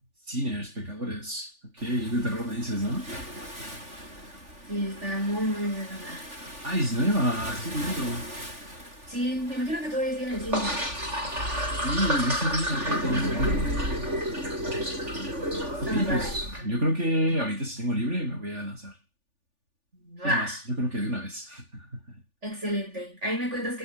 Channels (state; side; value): late; left; 3.4 ms